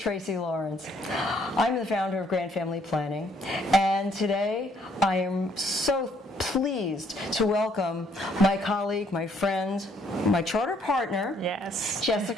Lawrence. I'm the founder of Grand Family Planning, and today I am so pleased to welcome my colleague, my friend, my charter partner, yes,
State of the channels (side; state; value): both; normal; correlation 0.67